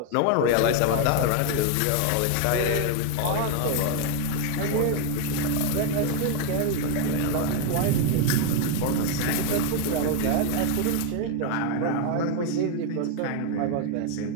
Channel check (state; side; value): different; both; correlation 0.01